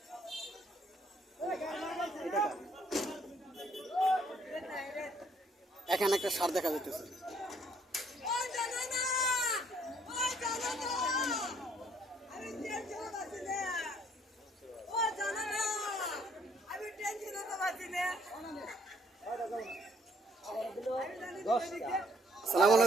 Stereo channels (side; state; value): both; normal; correlation 0.65